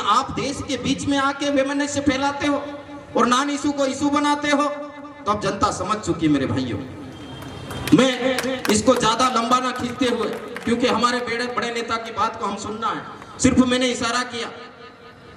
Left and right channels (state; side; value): identical; both; correlation 1.00